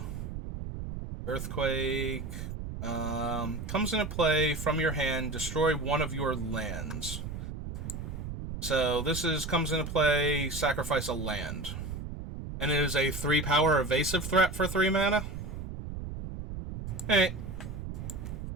Earthquake. Comes into play from your hand. Destroy one of your lands. So this comes into play. Sacrifice a land, and it is a 3-power evasive threat for 3 mana. Hey,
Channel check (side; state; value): right; noise; rumble, 7 dB below the sound